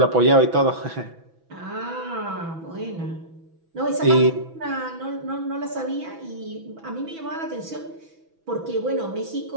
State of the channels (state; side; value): late; left; 6.1 ms